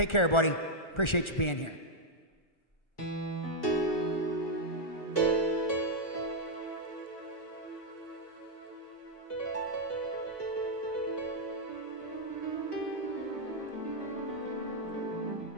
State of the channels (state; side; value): late; right; 1.4 ms